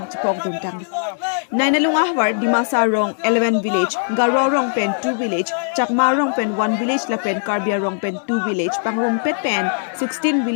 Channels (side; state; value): right; silent; 59 dB below the other